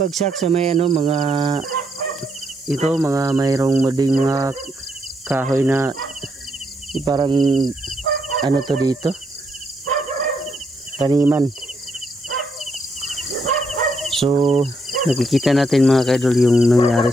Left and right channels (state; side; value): normal; both; correlation 0.76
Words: sa may mga mayroong mading mga kahoy na parang to dito. Taniman. So, nakikita natin mga kaidol yung nangyari